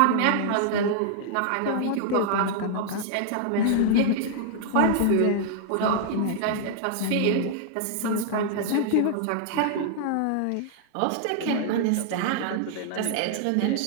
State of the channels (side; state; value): both; different; correlation -0.01